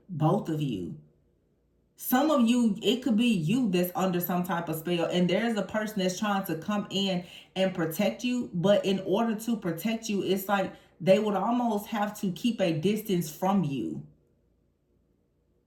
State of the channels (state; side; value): identical; both; correlation 1.00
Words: both of you. Some of you, it could be you that's under some type of spell, and there's a person that's trying to come in and protect you. But in order to protect you, it's like they would almost have to keep a distance from you.